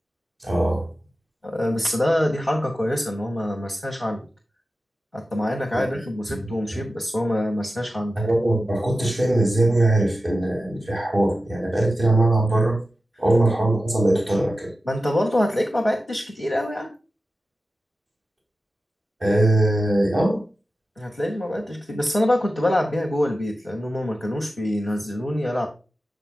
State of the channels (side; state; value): both; normal; correlation 0.93